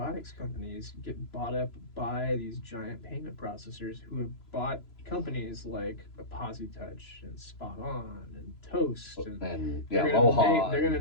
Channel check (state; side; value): late; right; 3.0 ms